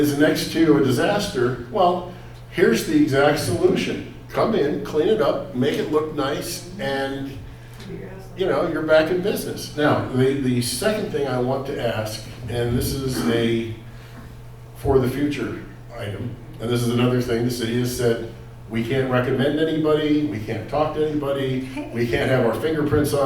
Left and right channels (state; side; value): identical; both; correlation 1.00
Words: next to a disaster, well, here's the exact solution. Come in, clean it up, make it look nice, and you're back in business. Now, the second thing I want to ask, and this is a for the future item, and this is another thing the city has said, we can't recommend anybody, we can't talk to anybody, we can't have our fingerprints